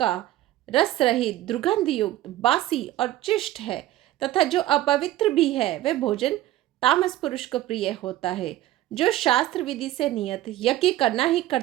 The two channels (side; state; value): left; quieter; 14.5 dB